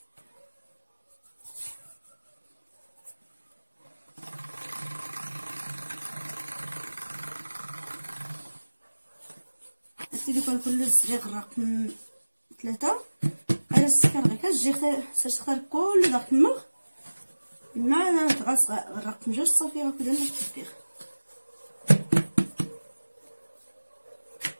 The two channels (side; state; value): both; inverted; correlation -1.00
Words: سيدي كل الزريغ رقم 3 على السكر غير كتجي تختار كل داك المغ مع تغاس رقم 2 صافي هكذا التطبيق.